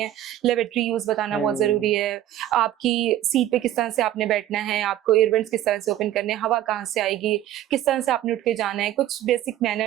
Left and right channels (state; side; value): quieter; left; 12.7 dB